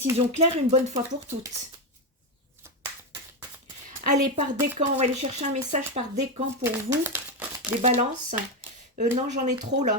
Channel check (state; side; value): normal; both; correlation 0.10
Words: claire une bonne fois pour toutes. Allez, par décan, on va aller chercher un message par décan pour vous, les balances. Non, j'en ai trop